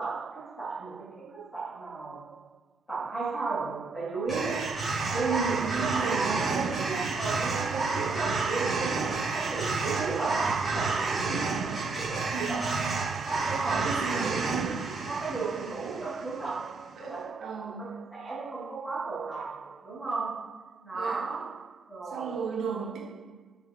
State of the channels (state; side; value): quieter; left; 3.9 dB